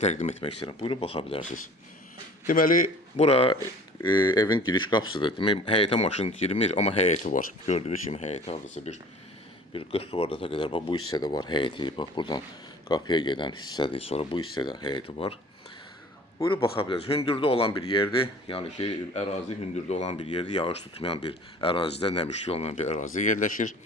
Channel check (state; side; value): normal; both; correlation 0.46